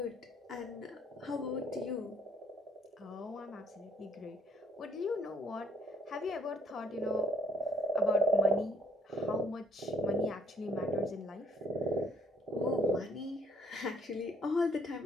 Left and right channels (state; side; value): normal; both; correlation 0.63